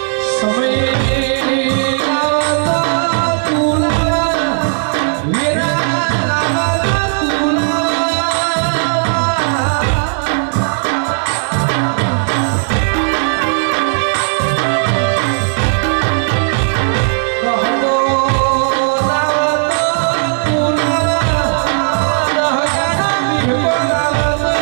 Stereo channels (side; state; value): left; silent; digital silence